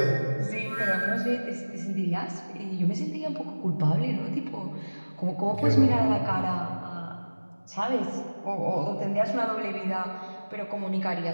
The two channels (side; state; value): both; inverted; correlation -1.00